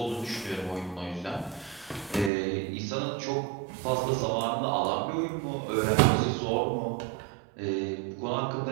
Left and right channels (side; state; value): left; drops out; at 2.3 s